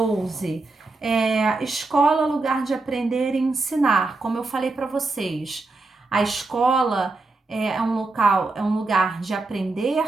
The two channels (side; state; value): left; quieter; 3.4 dB